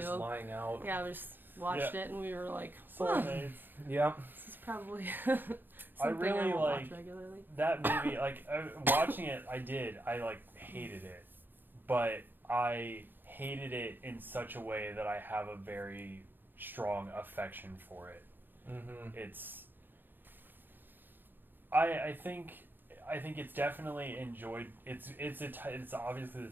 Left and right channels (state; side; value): late; left; 0.094 ms